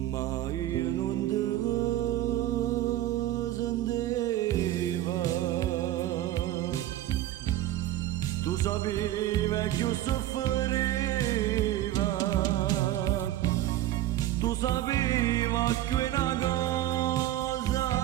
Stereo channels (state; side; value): quieter; left; 14.0 dB